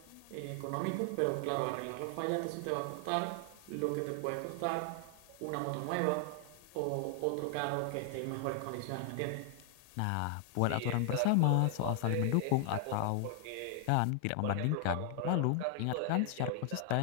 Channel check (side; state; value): both; different; correlation 0.00